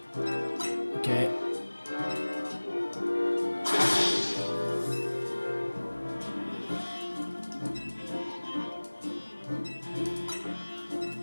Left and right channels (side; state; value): both; inverted; correlation -1.00